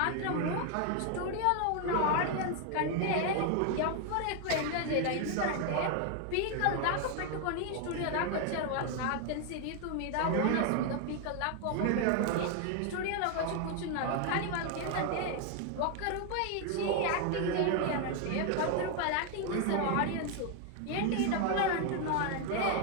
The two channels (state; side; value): different; both; correlation 0.01